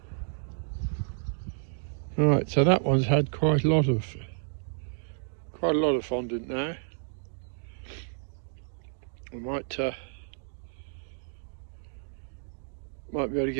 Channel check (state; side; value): silent; left; digital silence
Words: Right, so that one's had quite a lot of fondant now. I might be able to